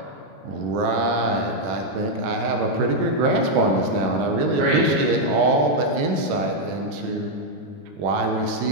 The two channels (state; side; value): late; left; 20 ms